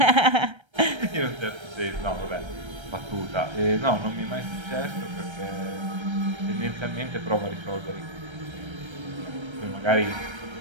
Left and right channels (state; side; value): late; left; 1.3 ms